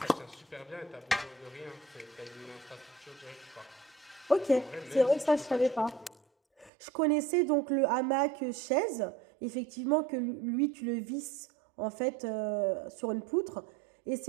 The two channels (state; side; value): drops out; left; at 6.7 s